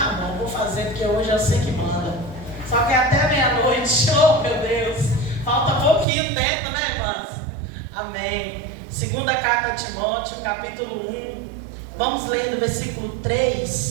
bom, vou fazer, porque hoje eu sei que manda. Só que até meia-noite, oh meu Deus, falta pouquinho tempo, né, irmãs? Amém. Segunda carta de Timóteo, capítulo 1. Vamos ler do versículo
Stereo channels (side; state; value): left; drops out; at 6.1 s